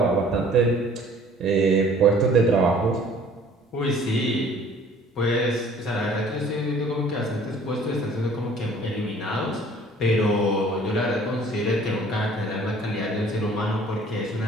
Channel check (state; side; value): normal; both; correlation 0.53